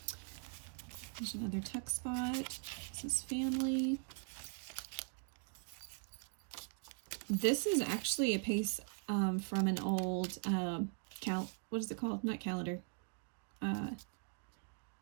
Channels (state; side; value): quieter; left; 38.4 dB